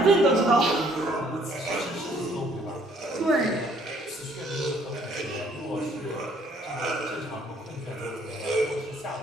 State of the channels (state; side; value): normal; both; correlation 0.63